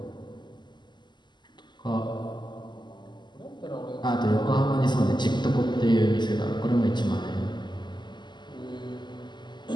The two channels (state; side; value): late; right; 0.21 ms